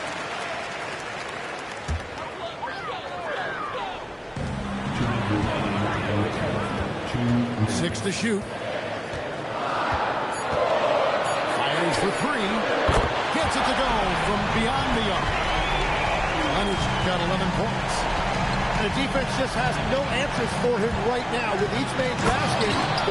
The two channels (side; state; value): both; identical; correlation 1.00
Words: 6 to shoot. Fires for 3. Gets it to go from beyond the arc. Leonard's got 11 points. The defense just has no answers for him right now. With each man's basket,